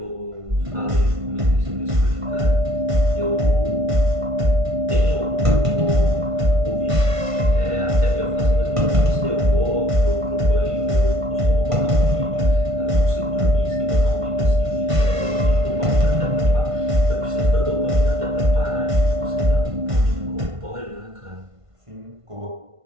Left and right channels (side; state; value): left; late; 1.5 ms